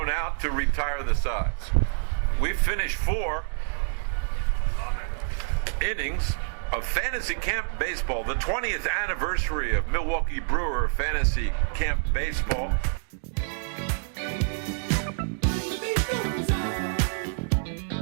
out to retire the sides. We've finished 4 innings of Fantasy Camp Baseball, the 20th anniversary of Milwaukee Brewer Fantasy Camp Baseball.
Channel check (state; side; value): silent; left; digital silence